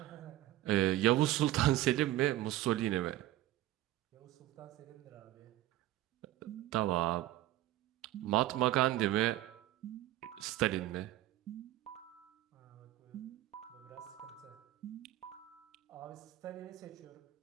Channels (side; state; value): left; quieter; 14.8 dB